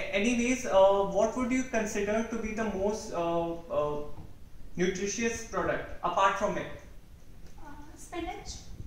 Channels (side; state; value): both; identical; correlation 1.00